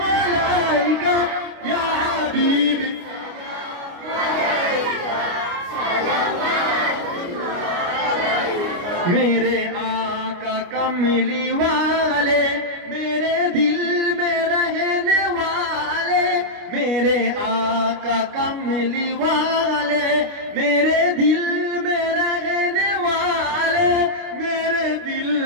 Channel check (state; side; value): late; left; 29 ms